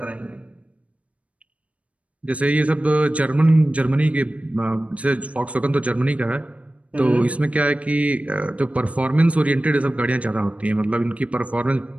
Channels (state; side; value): late; left; 0.065 ms